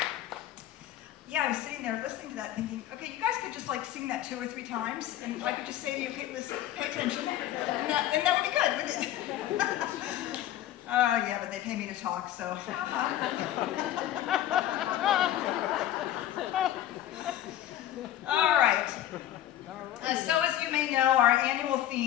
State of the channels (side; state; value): right; quieter; 12.6 dB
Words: Yeah, I was sitting there listening to that thinking, okay, you guys could just like sing that 2 or 3 times, and I could just say to you, okay, listen, pay attention, and that would be good, wouldn't it? Yeah, but they pay me to talk, so. All right. So as you may know, our annual